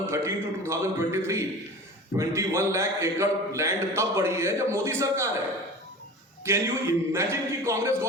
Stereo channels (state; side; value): normal; both; correlation 0.36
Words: to 2023 21 लाख एकड़ लैंड तब बढ़ी है जब मोदी सरकार है। कैन यू इमेजिन कि कांग्रेस